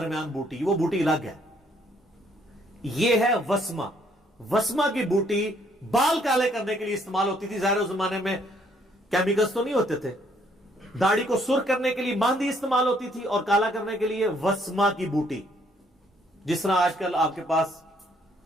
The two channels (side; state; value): both; normal; correlation 0.66